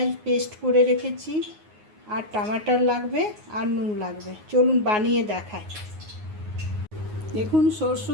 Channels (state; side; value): late; left; 9.5 ms